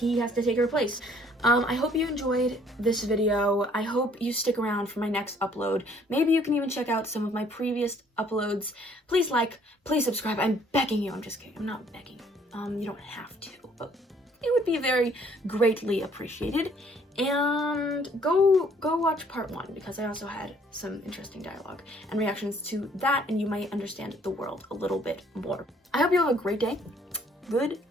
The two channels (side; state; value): both; normal; correlation 0.60